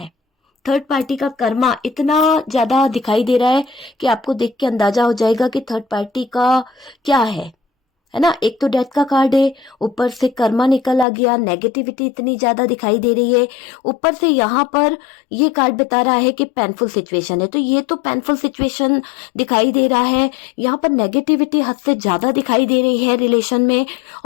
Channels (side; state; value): right; drops out; at 11.1 s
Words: थर्ड पार्टी का कर्मा इतना ज्यादा दिखाई दे रहा है कि आपको देख के अंदाजा हो जाएगा कि थर्ड पार्टी का क्या है। है ना। एक तो डेथ का कार्ड है, ऊपर से कर्मा निकल आ गया, नेगेटिविटी इतनी ज्यादा दिखाई दे रही है, ऊपर से यहाँ पर ये कार्ड बता रहा है कि पेनफुल सिचुएशन है। तो ये तो पेनफुल सिचुएशन दिखाई दे रहा है, यहाँ पर नेगेटिविटी हद से ज्यादा दिखाई दे रही है रिलेशन में,